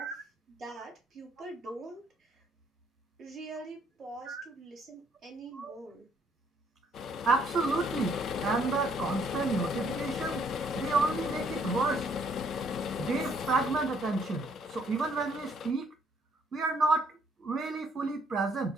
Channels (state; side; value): normal; both; correlation 0.66